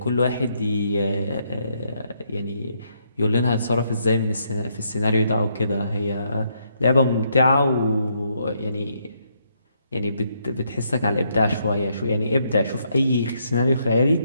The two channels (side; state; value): both; inverted; correlation -0.75